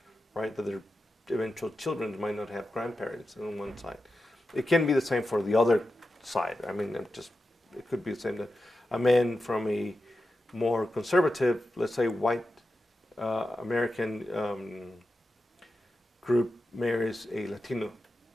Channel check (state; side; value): normal; both; correlation 0.91